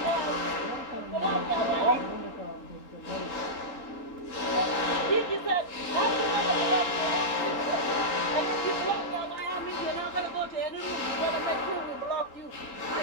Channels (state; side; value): late; right; 3.8 ms